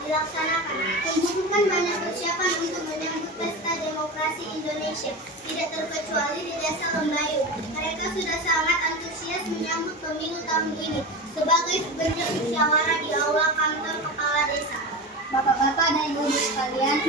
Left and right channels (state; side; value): normal; both; correlation 0.25